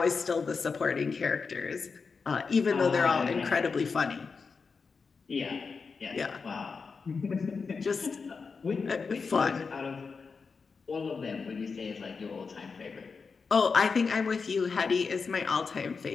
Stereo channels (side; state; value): right; quieter; 5.0 dB